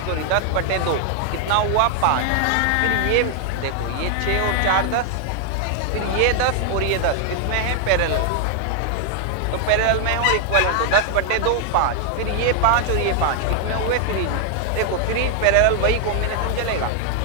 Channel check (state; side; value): different; both; correlation 0.00